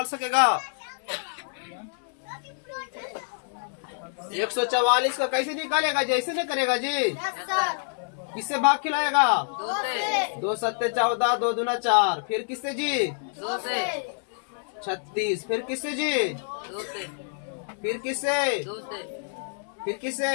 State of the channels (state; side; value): silent; right; digital silence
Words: सकेगा? 144 का कैसे निकालेगा? जैसे नहीं करेगा जी? किससे भाग खिलाएगा? 2 सत्ते 14, 2 दूना 4। फिर किससे जी? 2 से 36। फिर किससे जी? 2 से फिर किससे? 2 से फिर किससे?